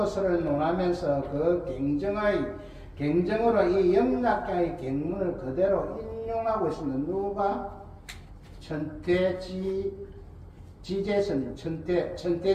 논하면서 그 경정으로 이 영락경의 경문을 그대로 인용하고 있습니다. 누가? 천태지제스님,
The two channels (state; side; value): identical; both; correlation 1.00